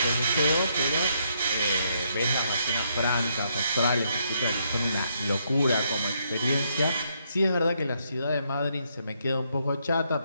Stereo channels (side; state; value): both; inverted; correlation -0.75